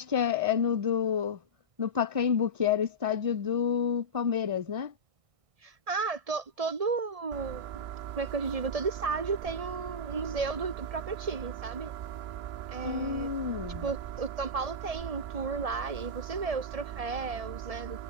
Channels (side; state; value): left; late; 1.6 ms